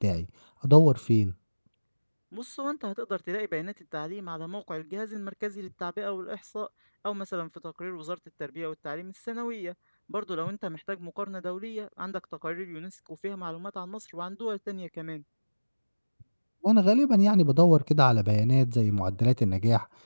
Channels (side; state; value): both; inverted; correlation -1.00